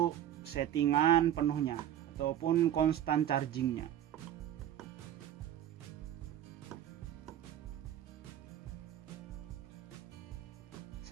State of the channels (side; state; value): left; quieter; 11.3 dB